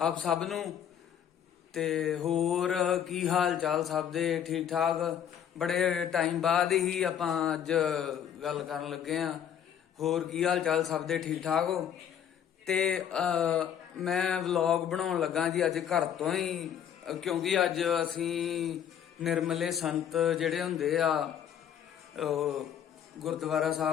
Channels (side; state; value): right; quieter; 9.1 dB